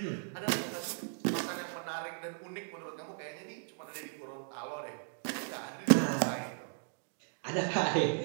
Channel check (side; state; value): left; silent; digital silence